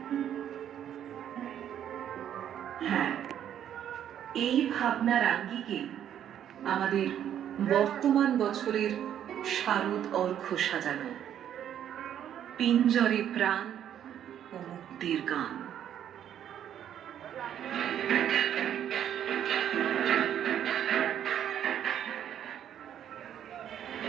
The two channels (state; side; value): quieter; left; 10.1 dB